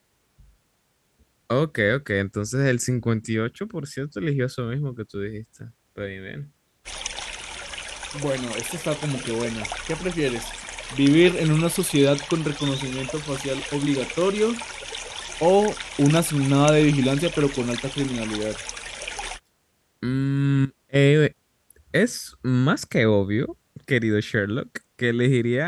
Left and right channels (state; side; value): identical; both; correlation 1.00